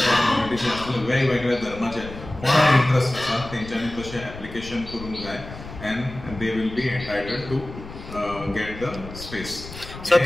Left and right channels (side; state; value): left; noise; rumble, 13 dB below the sound